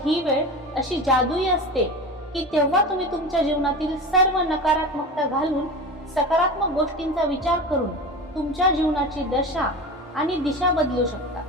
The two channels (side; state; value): both; normal; correlation 0.29